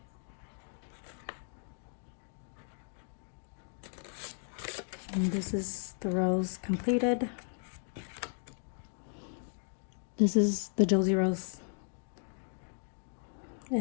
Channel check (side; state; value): right; silent; 54 dB below the other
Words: And this is the rose completed. This is the Josie rose